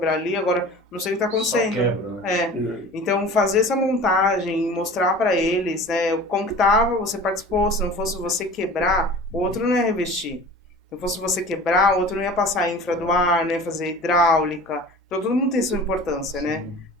ali, agora não sei o que está Só acontecendo. quebra, né? Então, fazer essa montagem, mostrar para eles, né, como que tava, você participou, se não fosse você quebrar, o outro não ia revestir. Se não fosse você quebrar, o outro não ia passar infra do ar, não ia fazer hidráulica. Então, todo mundo tem sua importância, né?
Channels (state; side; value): normal; both; correlation 0.40